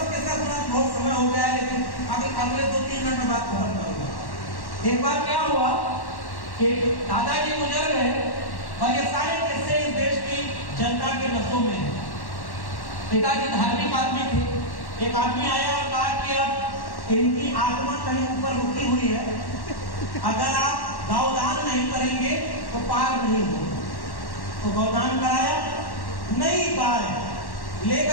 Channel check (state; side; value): late; right; 1.1 ms